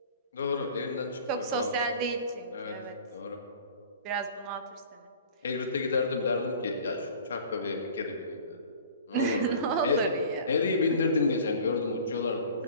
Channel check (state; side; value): inverted; both; correlation -0.44